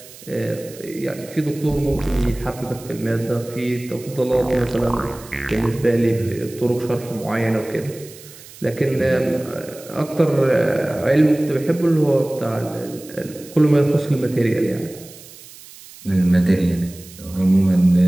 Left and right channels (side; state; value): right; noise; hiss, 19 dB below the sound